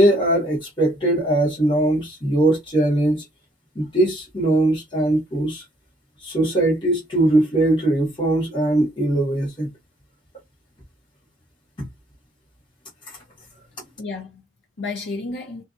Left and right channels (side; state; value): both; normal; correlation 0.66